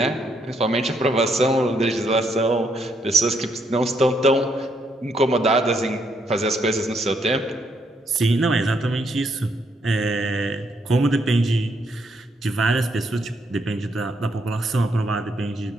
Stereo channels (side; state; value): both; normal; correlation 0.74